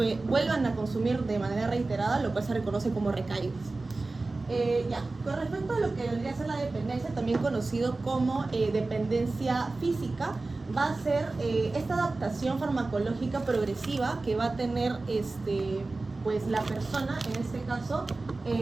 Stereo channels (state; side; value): quieter; left; 3.4 dB